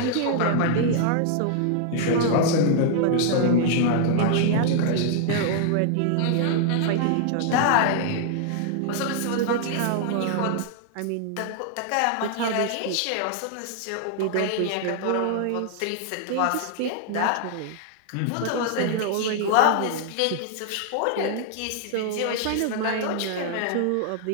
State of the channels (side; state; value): both; different; correlation 0.00